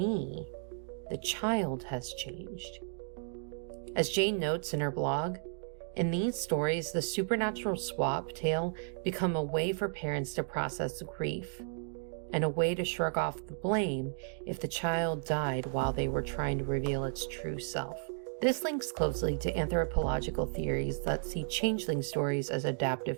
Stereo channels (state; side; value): silent; left; digital silence